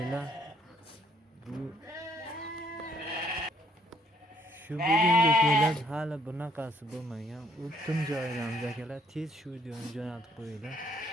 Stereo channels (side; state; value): both; normal; correlation 0.66